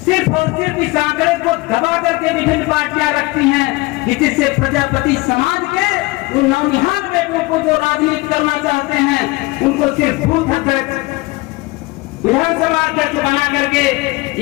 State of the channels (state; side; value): quieter; right; 22.5 dB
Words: सिर्फ और सिर्फ इस आंकड़े को दबा करके विभिन्न पार्टियां रखती हैं कि जिससे प्रजापति समाज के उन नौनिहाल बेटों को जो राजनीति करना चाहते हैं उनको सिर्फ बूथ अध्यक्ष, विधानसभा अध्यक्ष बना करके